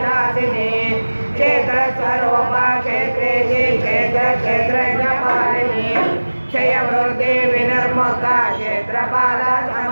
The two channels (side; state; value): both; inverted; correlation -1.00